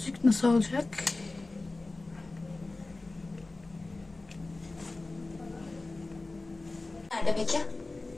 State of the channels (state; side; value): quieter; right; 3.2 dB